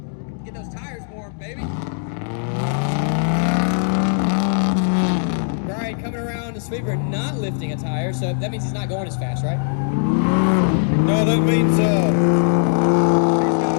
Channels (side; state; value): right; silent; digital silence